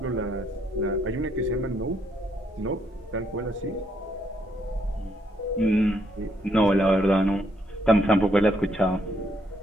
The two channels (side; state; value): both; normal; correlation 0.73